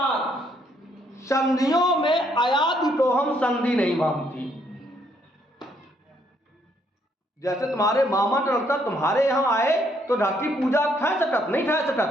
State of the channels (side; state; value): both; normal; correlation 0.70